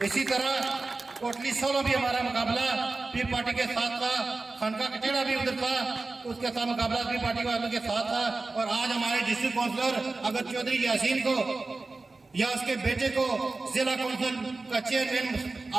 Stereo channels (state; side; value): quieter; left; 3.5 dB